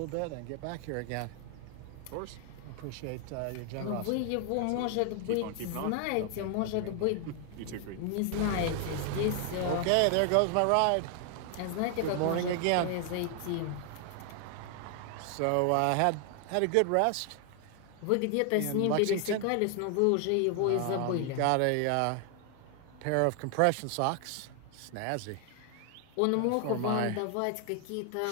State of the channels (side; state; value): both; different; correlation 0.00